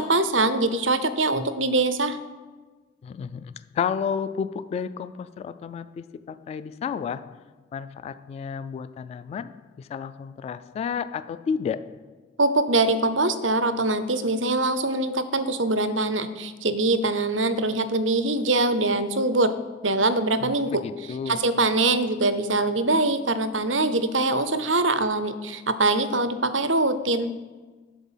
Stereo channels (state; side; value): normal; both; correlation -0.16